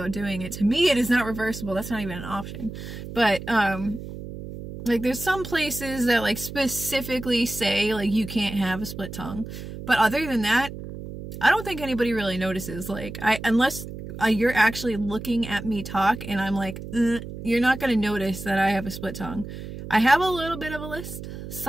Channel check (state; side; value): noise; right; hum, 10 dB below the sound